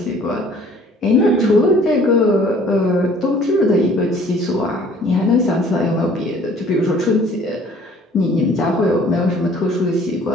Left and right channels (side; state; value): both; normal; correlation 0.54